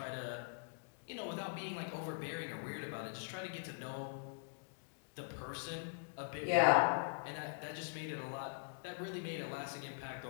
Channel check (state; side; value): silent; right; digital silence